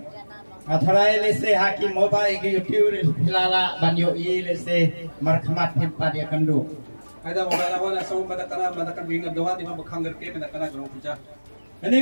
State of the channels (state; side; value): inverted; both; correlation -1.00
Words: Atharai lese hakim moba igi YouTube filala banyo i lese markhamat himpa dia kandu. Ada mogala wana sa madakan bingad doha di mabakhangar ke madakan grong puja.